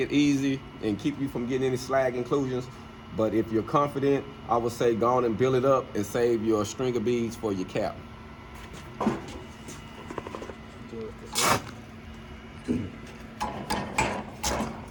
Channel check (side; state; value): both; identical; correlation 1.00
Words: easy and keep you from getting any slag inclusions. But if you're confident, I would say go on and build it up and save your stringer beads for your cap.